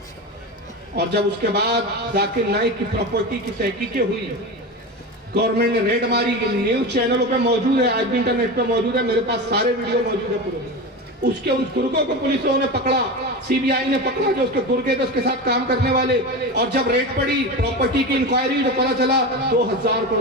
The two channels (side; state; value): both; normal; correlation 0.24